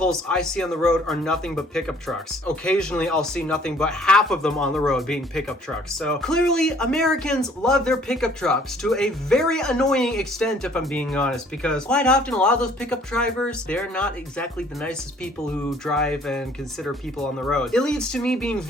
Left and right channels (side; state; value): both; normal; correlation 0.57